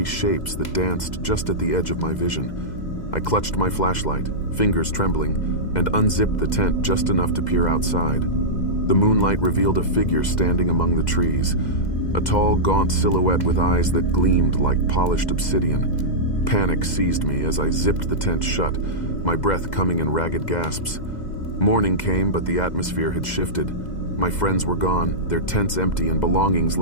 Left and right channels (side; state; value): right; late; 2.0 ms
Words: shapes that danced just at the edge of my vision. I clutched my flashlight, fingers trembling, and unzipped the tent just enough to peer outside. The moonlight revealed a figure standing among the trees, a tall, gaunt silhouette with eyes that gleamed like polished obsidian. Panic seized me as I zipped the tent shut, my breath coming in ragged gasps. Morning came, but the atmosphere had shifted. My friends were gone, their tents empty and belongings